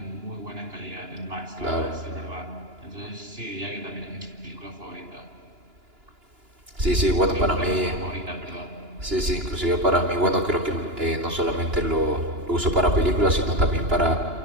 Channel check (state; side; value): late; left; 2.9 ms